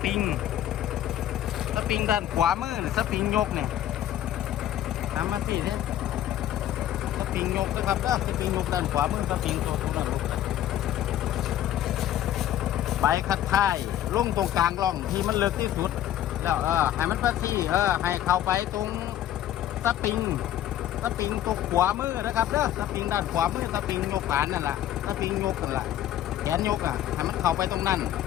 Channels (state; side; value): quieter; right; 12.0 dB